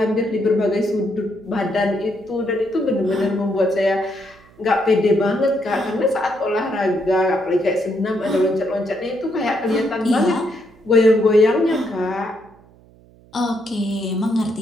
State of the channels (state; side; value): noise; right; hum, 27 dB below the sound